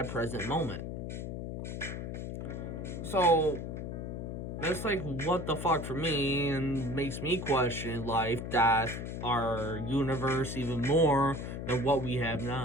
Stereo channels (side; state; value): left; noise; hum, 5 dB below the sound